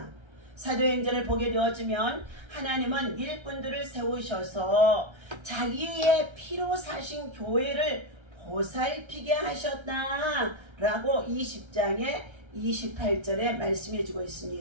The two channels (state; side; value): late; left; 1.3 ms